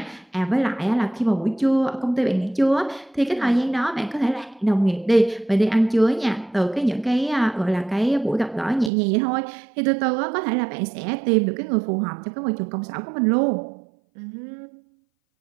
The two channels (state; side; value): drops out; left; at 8.9 s